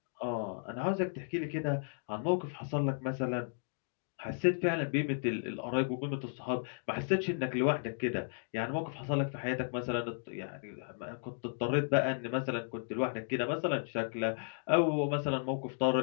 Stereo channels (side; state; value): right; silent; digital silence